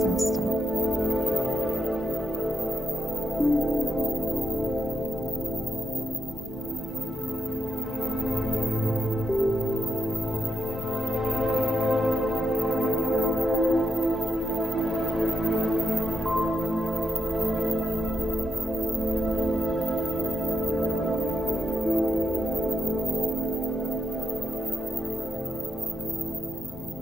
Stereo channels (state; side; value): normal; both; correlation 0.83